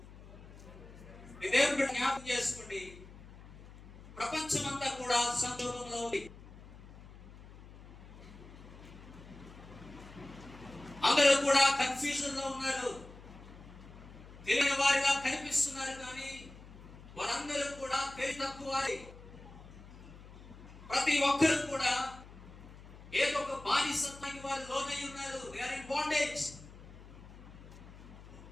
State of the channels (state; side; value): noise; left; hum, 18 dB below the sound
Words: దేవుడు జ్ఞాపకం చేసుకోండి, ప్రపంచమంతా కూడా సంక్షోభంలో ఉంది. అందరూ కూడా కన్ఫ్యూజన్ లో ఉన్నారు. తెలియని వారిగా కనిపిస్తున్నారు, కానీ వారందరూ కూడా తెలివి తక్కువ వారి. ప్రతి ఒక్కరు కూడా ఏదో ఒక బానిసత్వానికి వారు లోనై ఉన్నారు. They are in bondage.